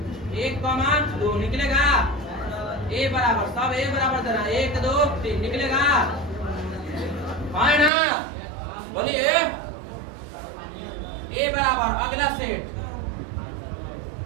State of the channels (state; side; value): drops out; left; at 7.9 s